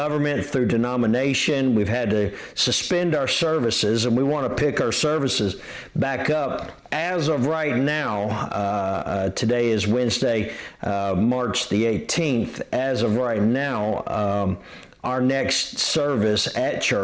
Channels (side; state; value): both; identical; correlation 1.00